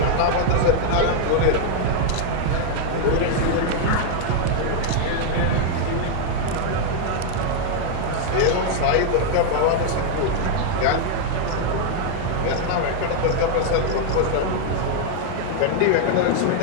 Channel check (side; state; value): both; different; correlation 0.00